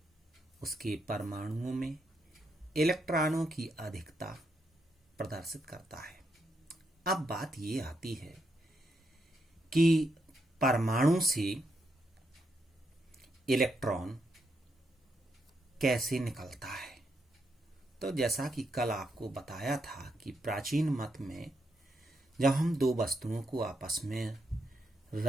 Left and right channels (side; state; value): both; normal; correlation 0.80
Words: उसके परमाणुओं में इलेक्ट्रॉनों की अधिकता प्रदर्शित करता है। अब बात ये आती है कि परमाणु से इलेक्ट्रॉन कैसे निकलता है। तो जैसा कि कल आपको बताया था कि प्राचीन मत में जब हम दो वस्तुओं को आपस में